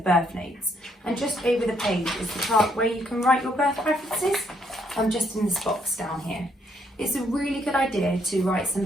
notes, and just over the page is the part where you can write your birth preferences. I'm just in this box down here. It's a really good idea to write some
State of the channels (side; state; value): both; normal; correlation 0.71